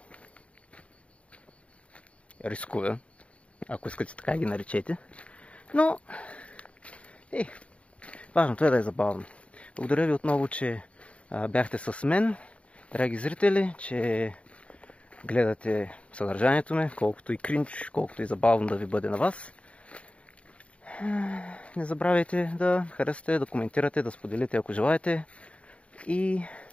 рискове, ако искате така ги наречете. Но важното е да е забавно. Благодаря ви отново, че бяхте с мен, драги зрители, че гледате съдържанието ми, колкото и кринч, колкото и забавно да ви бъде на вас. Не забравяйте да харесате, да коментирате, да споделите, ако желаете. И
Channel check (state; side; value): late; right; 0.063 ms